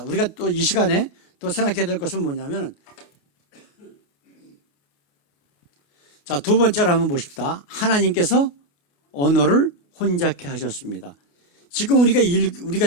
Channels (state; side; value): late; right; 28 ms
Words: 우리가 또 이 시간에 또 생각해야 될 것은 뭐냐면, 자, 두 번째로 한번 보십시다. 하나님께서 언어를 혼잡케 하셨습니다. 지금